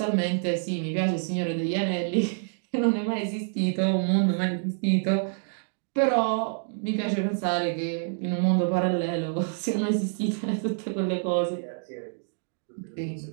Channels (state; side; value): silent; left; digital silence